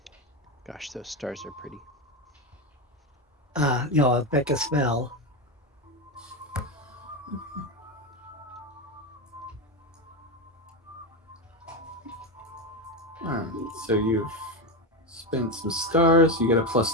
Gosh, those stars are pretty. A Becca spell. Alright, so you've spent some stars. You get a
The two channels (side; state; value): both; normal; correlation 0.14